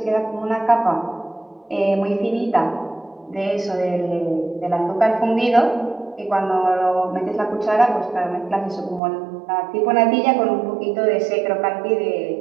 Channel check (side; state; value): left; drops out; at 9.0 s